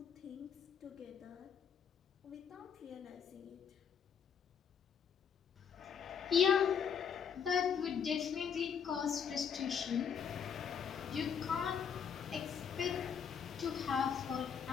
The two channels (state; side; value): quieter; right; 7.4 dB